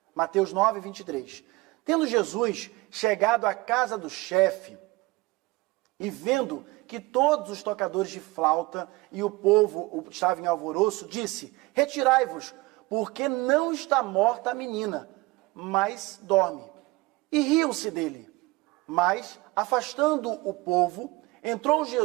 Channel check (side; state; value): left; quieter; 21.9 dB